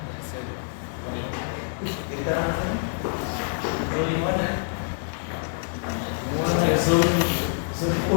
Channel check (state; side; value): silent; right; digital silence